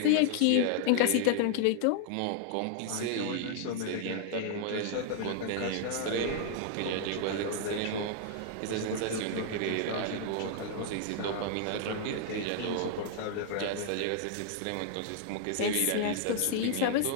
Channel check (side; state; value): both; different; correlation 0.00